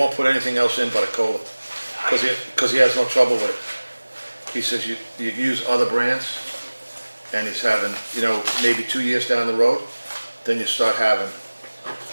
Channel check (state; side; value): inverted; both; correlation -1.00